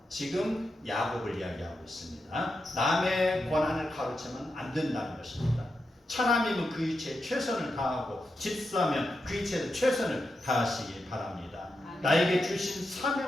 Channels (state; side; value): normal; both; correlation 0.87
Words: 지금 야곱을 이야기하고 있습니다. 남의 권한을 가로채면 안 된다는 것입니다. 차남이면 그 이치에 최선을 다하고 집사면 그 이치에 최선을 다하시기 바랍니다. 나에게 주신